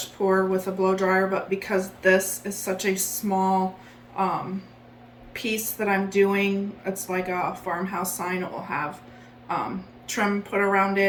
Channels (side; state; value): both; identical; correlation 1.00